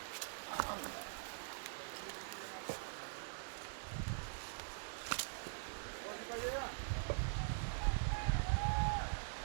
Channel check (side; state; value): left; silent; digital silence